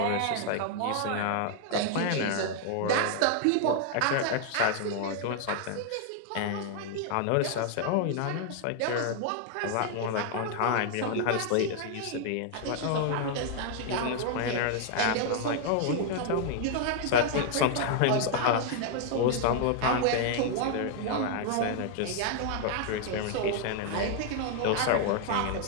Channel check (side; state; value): both; different; correlation 0.00